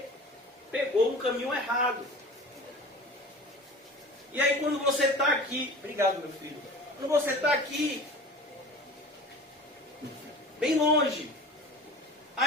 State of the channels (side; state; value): both; normal; correlation 0.38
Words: pegou um caminho errado. E aí quando você está aqui, obrigado meu filho, quando você está aqui, bem longe,